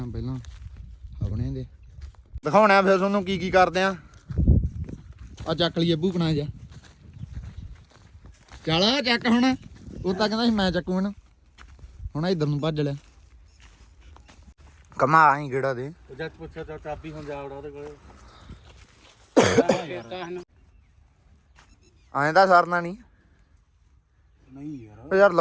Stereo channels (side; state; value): both; identical; correlation 1.00